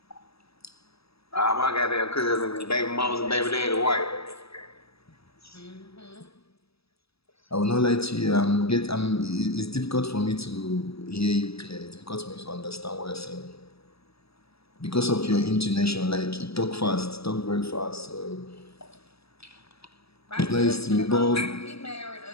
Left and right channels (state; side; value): late; right; 0.77 ms